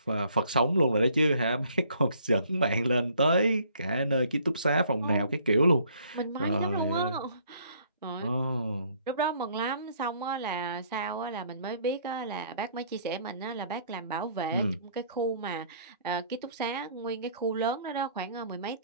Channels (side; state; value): both; inverted; correlation -0.61